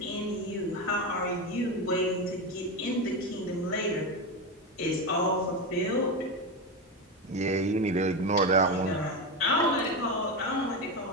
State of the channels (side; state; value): both; normal; correlation 0.15